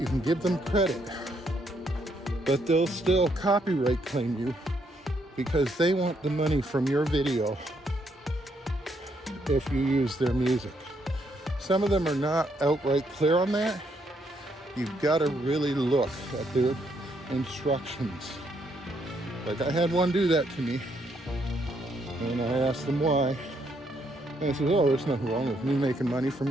can give them credit, but they'll still copyright claim you because they want the money from your video if you use their music. Some of them are not outright clear on that. You've got to really look at their instructions. Like, I had one do that to me, and I asked them why. And I said, oh, there's nothing wrong with me making money from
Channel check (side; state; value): both; normal; correlation 0.74